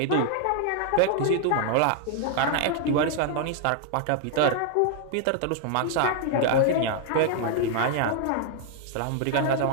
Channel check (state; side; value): different; both; correlation 0.00